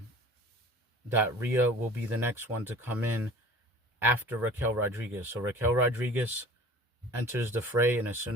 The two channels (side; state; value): both; normal; correlation 0.44